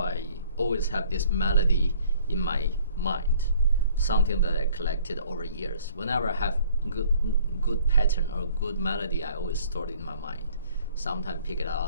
always have this melody in my mind, something that I collected over years. Whenever I have good pattern or good melody, I always store it in my mind. Sometimes pick it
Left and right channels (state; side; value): inverted; both; correlation -0.56